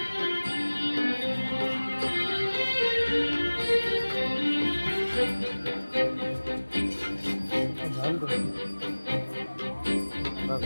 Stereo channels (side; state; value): both; inverted; correlation -1.00